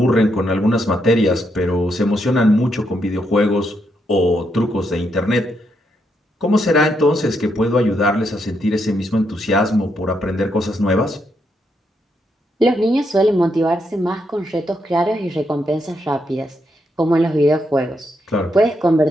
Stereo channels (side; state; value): both; normal; correlation 0.79